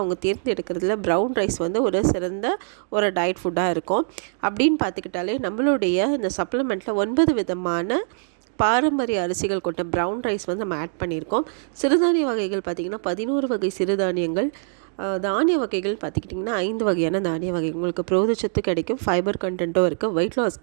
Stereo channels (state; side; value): silent; left; digital silence